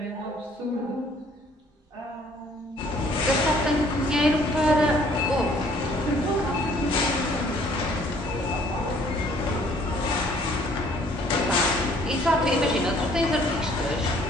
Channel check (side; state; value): both; normal; correlation 0.60